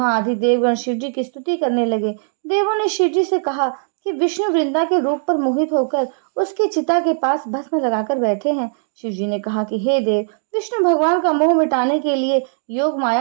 आदि देवगण शिवजी की स्तुति करने लगे। देवों ने शिवजी से कहा कि विष्णु वृंदा के रूप पर मोहित होकर उसकी चिता के पास भस्म लगाकर बैठे हैं। शिवजी ने कहा कि हे देव, विष्णु भगवान का मोह मिटाने के लिए योग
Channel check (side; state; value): left; silent; digital silence